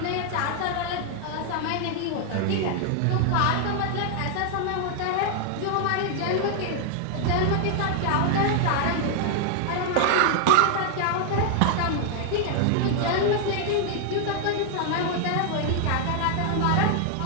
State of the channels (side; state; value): both; different; correlation 0.00